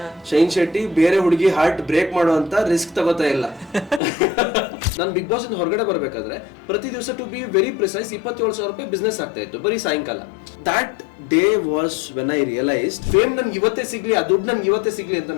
ಶೈನ್ ಶೆಟ್ಟಿ ಬೇರೆ ಹುಡುಗಿ ಹಾರ್ಟ್ ಬ್ರೇಕ್ ಮಾಡುವಂತ ರಿಸ್ಕ್ ತಗೋತಾ ಇಲ್ಲ. ನಾನು ಬಿಗ್ ಬಾಸ್ ಇಂದ ಹೊರಗಡೆ ಬರ್ಬೇಕಾದ್ರೆ ಪ್ರತಿ ದಿವಸ ಟು ಬಿ ವೆರಿ ಪ್ರಿಸೈಸ್ 27,000 ರೂಪಾಯಿ ಬಿಸ್ನೆಸ್ ಆಗ್ತಾ ಇತ್ತು ಬರೀ ಸಾಯಂಕಾಲ. That day was when I realised fame ನನ್ಗೆ ಇವತ್ತೇ ಸಿಗ್ಲಿ, ಆ ದುಡ್ಡು ನನ್ಗೆ ಇವತ್ತೇ ಸಿಗ್ಲಿ ಅಂತ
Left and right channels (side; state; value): right; drops out; at 4.0 s